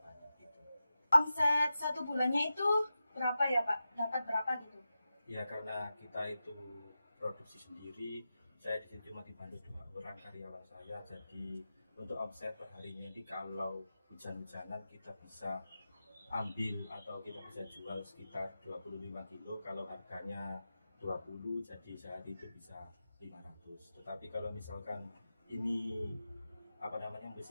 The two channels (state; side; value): inverted; both; correlation -0.92